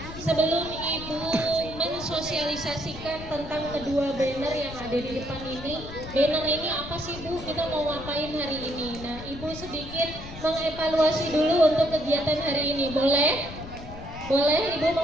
Sebelum Ibu mensosialisasikan tentang kedua banner yang ada di depan ini, banner ini apa sih Bu? Kita mau ngapain hari ini? Nah, Ibu sedikit mengevaluasi dulu untuk kegiatan hari ini, boleh? Boleh Ibu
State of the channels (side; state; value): left; noise; rumble, 12 dB below the sound